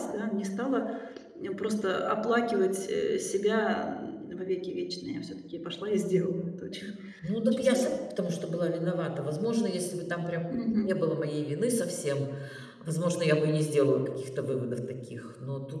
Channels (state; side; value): identical; both; correlation 1.00